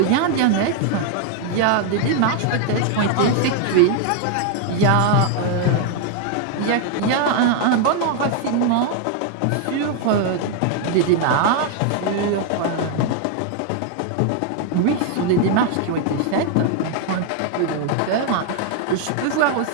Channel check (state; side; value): different; both; correlation 0.00